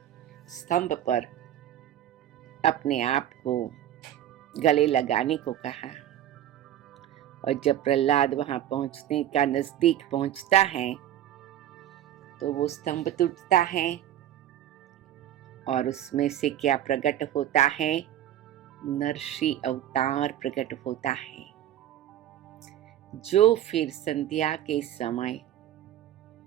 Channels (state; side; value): quieter; left; 11.7 dB